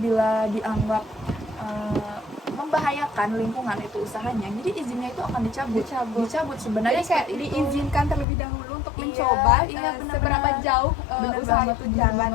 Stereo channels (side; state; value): right; drops out; at 8.2 s